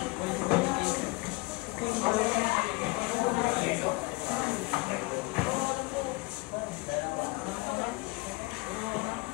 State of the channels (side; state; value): right; quieter; 24.5 dB